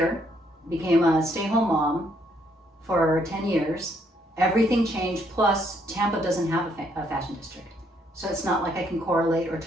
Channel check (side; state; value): both; normal; correlation 0.70